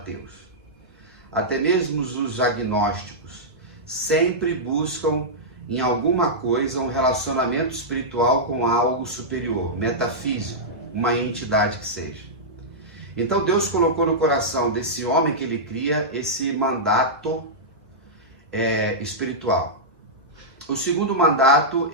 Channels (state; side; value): normal; both; correlation -0.11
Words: até mesmo os agnósticos, sempre buscam em alguma coisa um relacionamento espiritual com algo superior, metafísico, uma entidade que seja. Então Deus colocou no coração desse homem que Ele cria esse mandato espiritual. O segundo mandato,